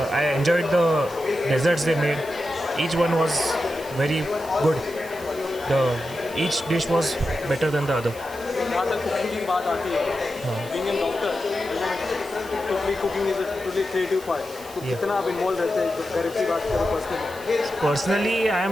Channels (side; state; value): right; noise; hiss, 18 dB below the sound